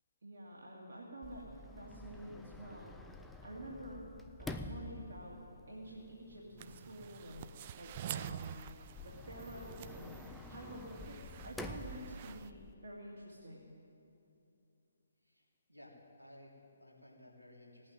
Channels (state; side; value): inverted; both; correlation -0.34